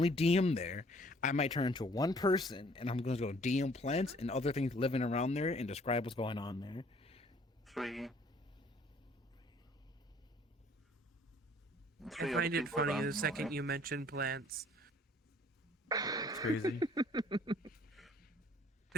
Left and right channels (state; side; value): normal; both; correlation 0.58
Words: DM there. I might turn into one person, and I'm going to go DM plants and other things living around there and describe what's going on there. 3. I find it funny the second you mention plants. It's crazy.